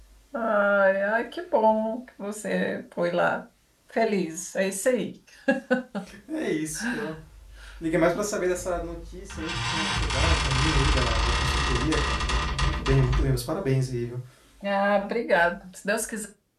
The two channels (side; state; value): both; identical; correlation 1.00